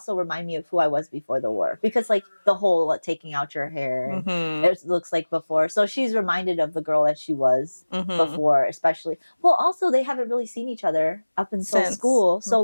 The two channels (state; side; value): inverted; both; correlation -1.00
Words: remind me of who I was before the war. Because, like, the whole taking out your hair, and it looks like before. So she's reminded of the girl that she was before, especially. Well, also, they haven't really seen each other up until school. So,